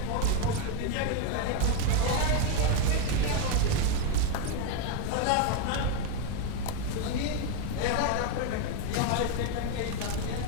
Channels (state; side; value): different; both; correlation 0.01